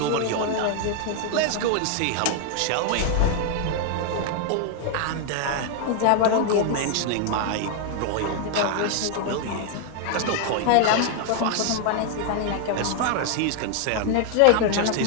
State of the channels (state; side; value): different; both; correlation 0.00